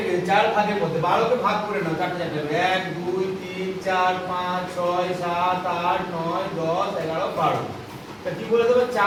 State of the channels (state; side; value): identical; both; correlation 1.00